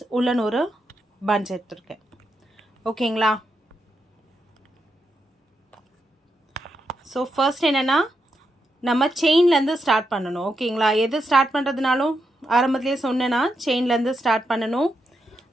உள்ளன் ஒரு பஞ்ச் எடுத்துருக்கேன். ஓகேங்களா? ஸோ ஃபர்ஸ்ட் என்னென்னா நம்ம செயின்லேருந்து ஸ்டார்ட் பண்ணணும். ஓகேங்களா? எது ஸ்டார்ட் பண்ணுறதுனாலும் ஆரம்பத்துலேயே சொன்னேன்னா செயின்லேருந்து ஸ்டார்ட் பண்ணணும்.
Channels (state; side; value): normal; both; correlation 0.84